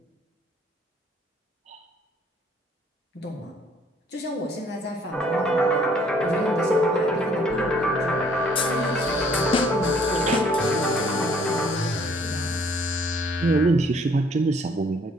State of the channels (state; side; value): normal; both; correlation 0.61